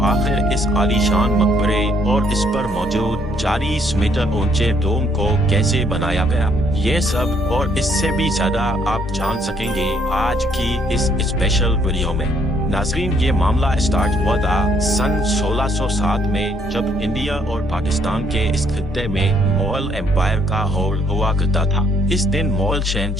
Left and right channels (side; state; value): both; normal; correlation 0.68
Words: आखिर इस आलीशान मकबरे और इस पर मौजूद 40 मीटर ऊंचे डोम को कैसे बनाया गया, ये सब और इससे भी ज्यादा आप जान सकेंगे आज की इस स्पेशल वीडियो में। नाज़रीन, ये मामला स्टार्ट हुआ था सन 1607 में, जब इंडिया और पाकिस्तान के इस खित्ते में मुगल एम्पायर का होल्ड हुआ करता था। इस दिन मुगल